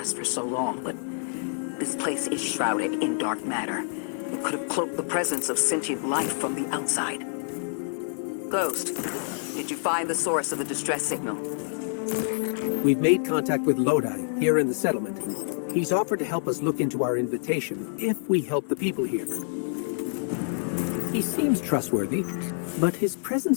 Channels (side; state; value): right; silent; 59 dB below the other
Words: for so long, but this place is shrouded in dark matter. It could have cloaked the presence of sentient life from the outside. Ghost, did you find the source of the distress signal? We've made contact with Lodi, here in the settlement. He's offered to help us look into our invitation, if we help the people here. He seems trustworthy, but his